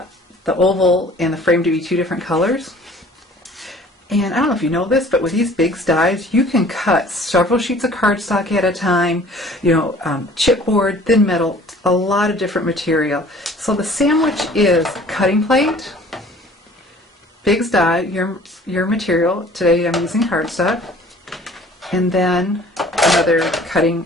oval and the frame to be two different colors. And I don't know if you know this, but with these Big's dies, you can cut several sheets of cardstock at a time, chipboard, thin metal, a lot of different material. So the sandwich is cutting plate, Big's die, your material. Today I'm using cardstock. And then another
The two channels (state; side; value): normal; both; correlation 0.51